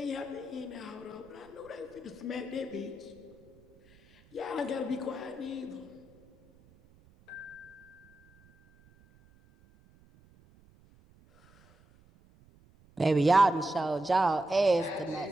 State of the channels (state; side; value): noise; right; rumble, 28 dB below the sound